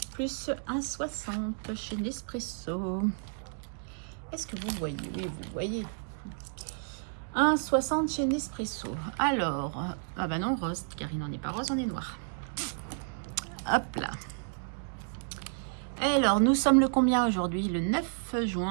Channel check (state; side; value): silent; left; digital silence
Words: plus 1,60 chez Nespresso. Est-ce que vous voyez? Oui, vous voyez. 1,60 chez Nespresso. Alors, ah bah non, rose, car il n'en est pas rose, on est noir. Hop là. Alors, nous sommes le combien aujourd'hui? Le 9